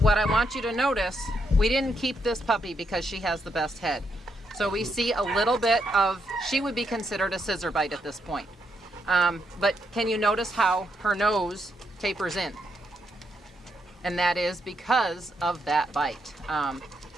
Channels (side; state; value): both; normal; correlation 0.79